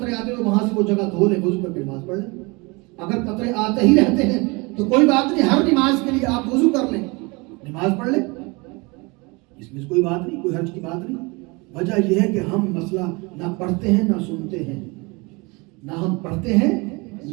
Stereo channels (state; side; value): quieter; left; 27.0 dB